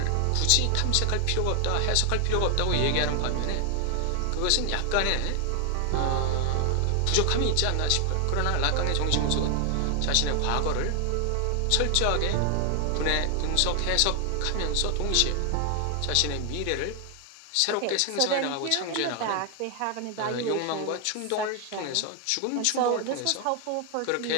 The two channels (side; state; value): both; different; correlation 0.00